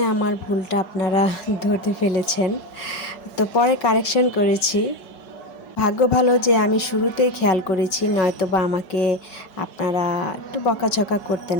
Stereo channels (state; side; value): late; right; 5.4 ms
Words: আমার ভুলটা আপনারা ধরতে ফেলেছেন, তো পরে কারেকশন করেছি। ভাগ্য ভালো যে আমি শুরুতেই খেয়াল করেছি, নয়তো বা আমাকে আপনারা একটু বকাঝকা করতেন